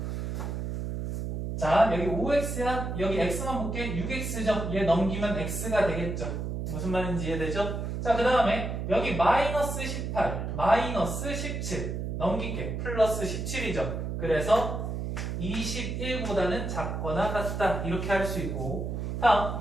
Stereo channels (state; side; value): noise; right; hum, 3 dB below the sound